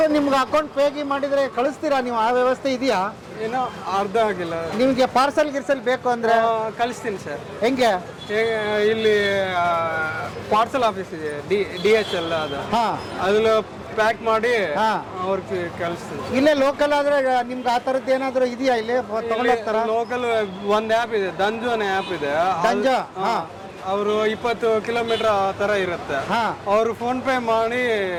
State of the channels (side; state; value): both; identical; correlation 1.00